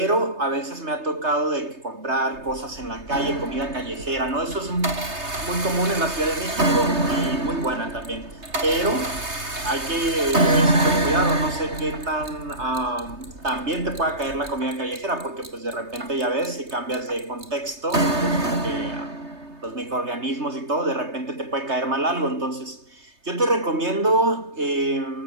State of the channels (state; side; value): late; left; 3.3 ms